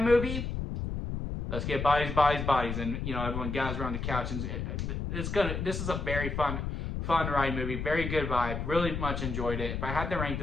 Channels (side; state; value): left; noise; rumble, 3 dB below the sound